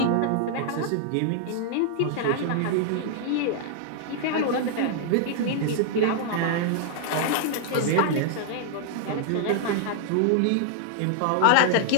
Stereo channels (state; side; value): different; both; correlation -0.01